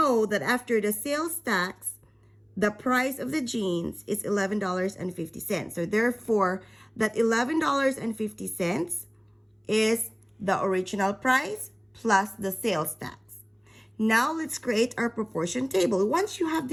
that after the sales tax, the price of the jeans is $11.50. So therefore, that $11.50 is the original price plus the sales tax. Now let's create our proportion table. Once you have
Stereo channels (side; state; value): both; identical; correlation 1.00